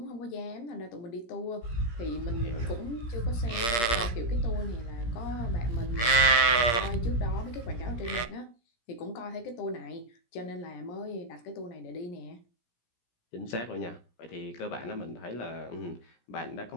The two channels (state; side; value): late; right; 17 ms